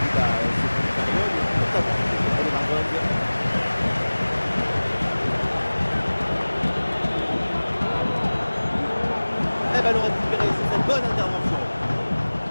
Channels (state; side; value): inverted; both; correlation -1.00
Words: Et ballon récupéré sur cette bonne intervention.